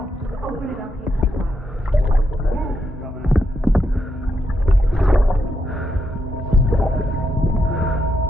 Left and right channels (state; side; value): normal; both; correlation 0.82